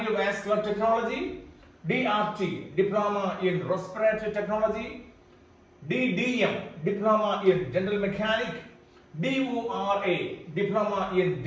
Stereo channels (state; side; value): identical; both; correlation 1.00